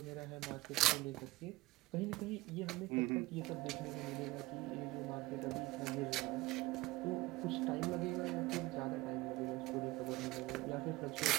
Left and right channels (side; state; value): left; quieter; 19.7 dB